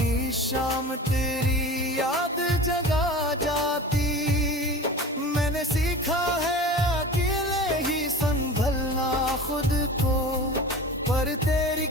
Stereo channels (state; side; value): normal; both; correlation 0.36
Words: शाम तेरी याद जगा जाती। मैंने सीखा है अकेले ही संभलना खुद को, पर तेरी